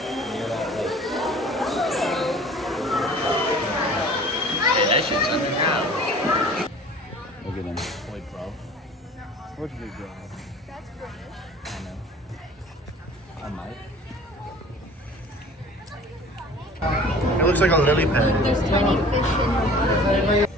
Hey, that shit's underground. Look at them. Boy, bro. What's big dog? That's British. I know. I might. It looks like a lily pad. There's tiny fish in the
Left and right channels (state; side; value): normal; both; correlation 0.46